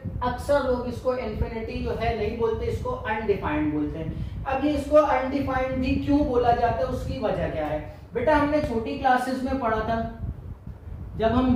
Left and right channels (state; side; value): identical; both; correlation 1.00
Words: अक्सर लोग इसको इन्फिनिटी जो है नहीं बोलते, इसको अनडिफाइंड बोलते हैं। अब ये इसको अनडिफाइंड भी क्यों बोला जाता है, उसकी वजह क्या है बेटा, हमने छोटी क्लासेस में पढ़ा था जब हम